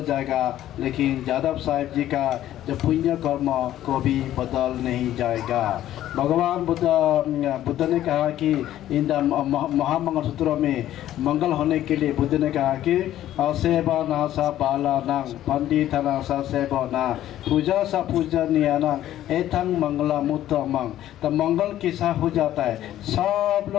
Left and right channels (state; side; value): quieter; right; 12.8 dB